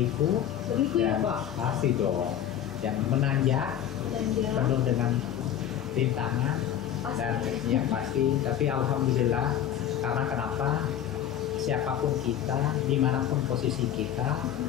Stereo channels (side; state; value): right; quieter; 10.4 dB